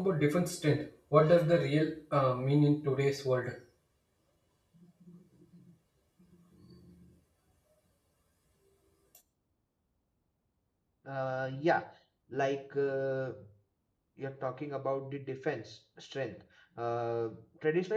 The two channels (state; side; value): identical; both; correlation 1.00